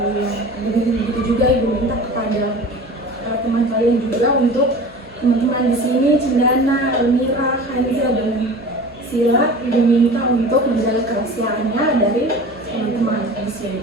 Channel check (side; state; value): both; normal; correlation 0.38